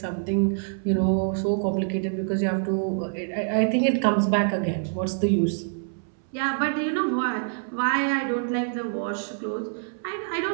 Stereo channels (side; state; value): left; silent; 61 dB below the other